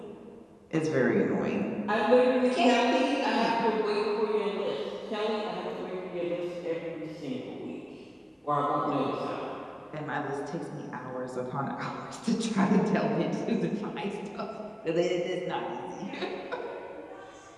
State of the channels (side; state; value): both; identical; correlation 1.00